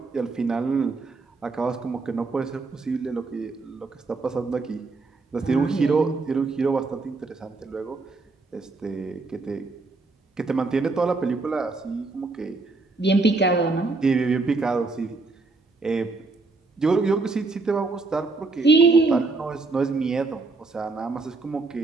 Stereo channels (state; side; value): quieter; left; 3.7 dB